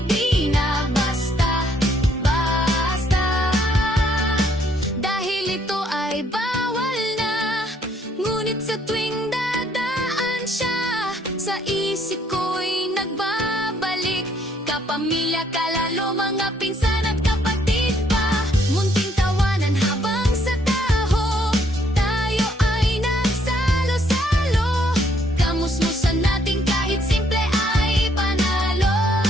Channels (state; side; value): normal; both; correlation 0.68